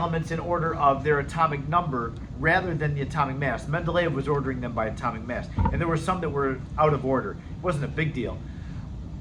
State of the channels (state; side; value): identical; both; correlation 1.00